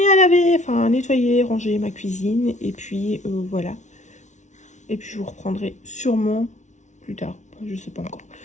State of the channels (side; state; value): right; late; 0.35 ms